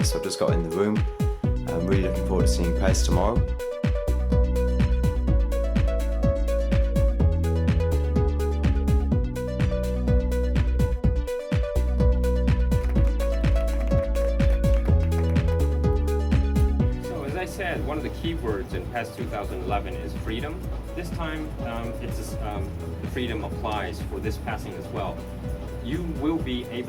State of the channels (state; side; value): identical; both; correlation 1.00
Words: so I've just got in the room. I'm really looking forward to seeing PES tomorrow. One of the keywords in PES 2011 is freedom. This time, the freedom applies for this passing as well. You will be